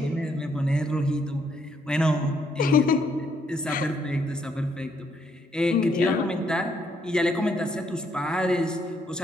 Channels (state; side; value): normal; both; correlation 0.72